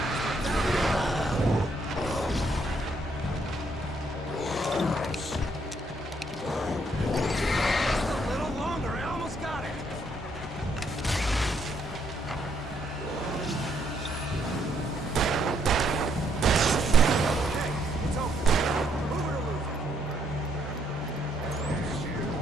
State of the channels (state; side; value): normal; both; correlation 0.72